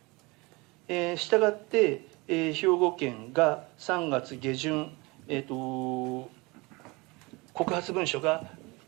したがって兵庫県が3月下旬、告発文書が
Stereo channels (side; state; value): left; quieter; 25.3 dB